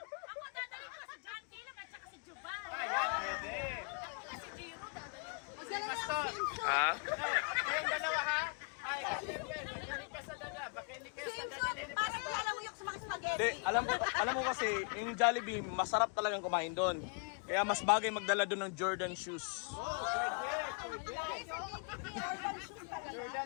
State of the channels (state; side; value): quieter; right; 37.1 dB